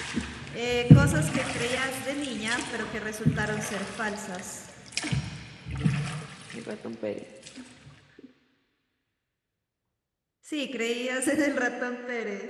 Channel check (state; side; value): identical; both; correlation 1.00